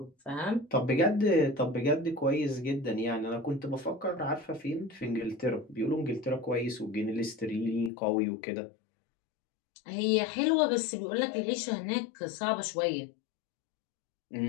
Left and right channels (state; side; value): drops out; right; at 7.9 s